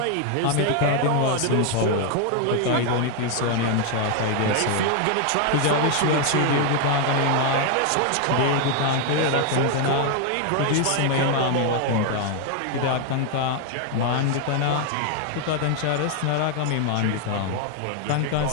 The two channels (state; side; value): different; both; correlation 0.01